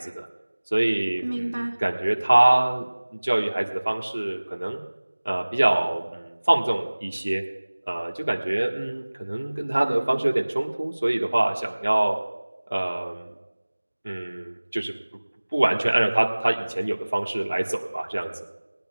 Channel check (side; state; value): both; inverted; correlation -1.00